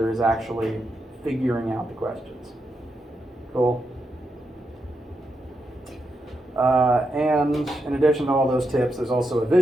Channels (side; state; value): both; normal; correlation 0.84